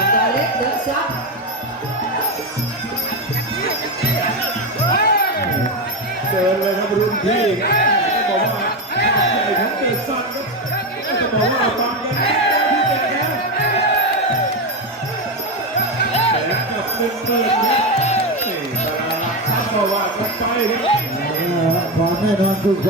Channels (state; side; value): normal; both; correlation 0.13